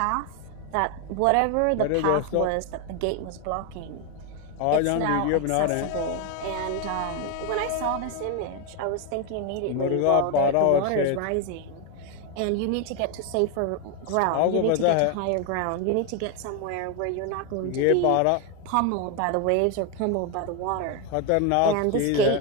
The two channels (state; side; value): different; both; correlation 0.01